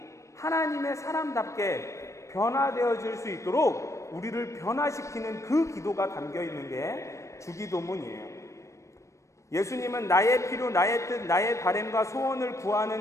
하나님의 사람답게 변화되어질 수 있도록 우리를 변화시키는 그 기도가 담겨 있는 게 주기도문이에요. 예수님은 나의 필요, 나의 뜻, 나의 바램과 소원을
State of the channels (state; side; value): late; right; 0.15 ms